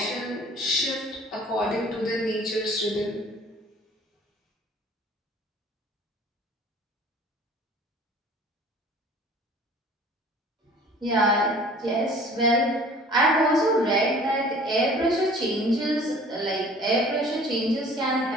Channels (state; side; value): normal; both; correlation 0.49